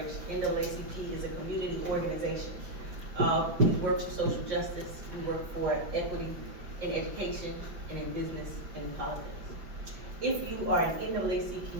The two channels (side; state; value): left; late; 5.7 ms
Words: NAACP is a community organization. We work for social justice, we work for equity in education, and in business, and in politics. If you are an